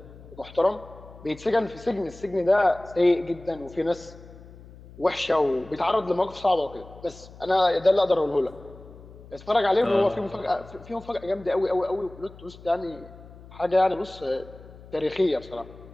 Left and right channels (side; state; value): left; noise; hum, 19 dB below the sound